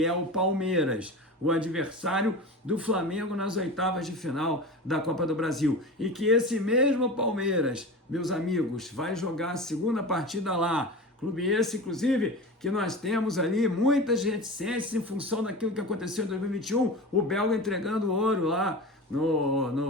é o Palmeiras, o adversário do Flamengo nas oitavas de final da Copa do Brasil, e que esse mesmo Palmeiras, meus amigos, vai jogar a segunda partida lá, clube esse, inclusive, que nós temos ali muitas reticências em função daquilo que aconteceu em 2021, o belga entregando ouro lá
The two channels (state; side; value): normal; both; correlation 0.30